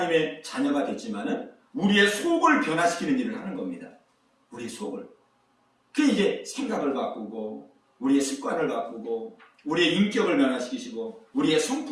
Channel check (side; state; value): both; identical; correlation 1.00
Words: 자녀가 됐지만은 우리의 속을 변화시키는 일을 하는 겁니다. 우리의 속을. 그 이제 생각을 바꾸고 우리의 습관을 바꾸고 우리의 인격을 변화시키시고 우리의